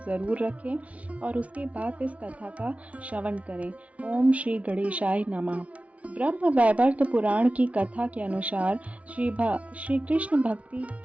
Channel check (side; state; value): left; late; 0.066 ms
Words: ज़रूर रखें और उसके बाद इस कथा का श्रवण करें। ओम श्री गणेशाय नमः। ब्रह्म वैवर्त पुराण की कथा के अनुसार श्री कृष्ण भक्ति